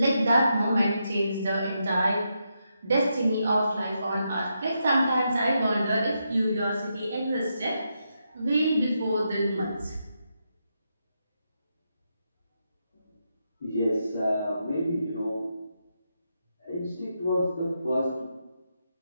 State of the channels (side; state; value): both; inverted; correlation -0.83